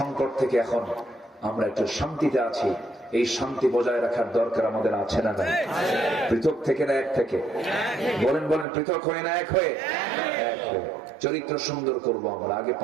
থেকে এখন আমরা একটু শান্তিতে আছি। এই শান্তি বজায় রাখার দরকার আমাদের আছে না নাই? পৃথক থেকে না এক থেকে? বলেন বলেন, পৃথক হয়ে না এক হয়ে? এক হয়ে। চরিত্র সুন্দর করবো আমরা। আগে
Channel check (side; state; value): left; drops out; at 8.7 s